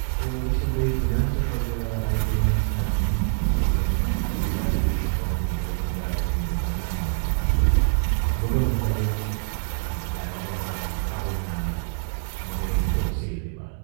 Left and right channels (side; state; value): left; silent; 62 dB below the other